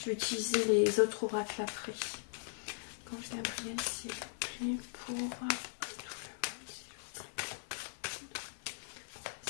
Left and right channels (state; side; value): silent; right; 52 dB below the other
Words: vais utiliser les autres oracles après. Ange Gabriel, s'il vous plaît, pour...